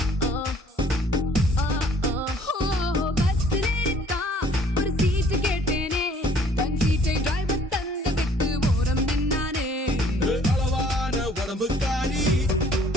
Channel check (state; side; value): normal; both; correlation 0.57